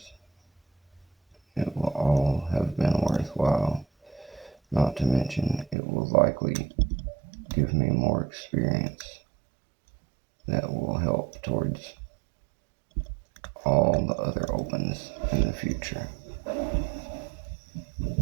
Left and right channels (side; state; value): left; drops out; at 5.8 s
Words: it will all have been worthwhile. Not to mention, it will likely give me more experience that will help towards all the other opens in the future.